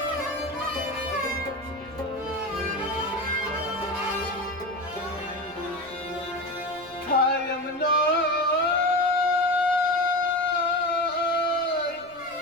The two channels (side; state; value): left; noise; rumble, 28 dB below the sound